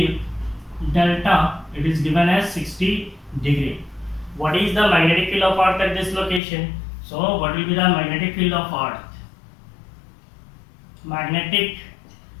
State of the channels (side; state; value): right; drops out; at 6.4 s